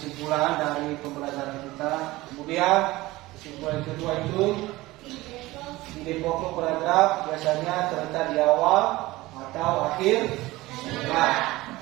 dari pembelajaran kita. Kemudian kesimpulan kedua itu ide pokok paragraf biasanya terletak di awal atau akhir sekolah.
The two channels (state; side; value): quieter; left; 19.2 dB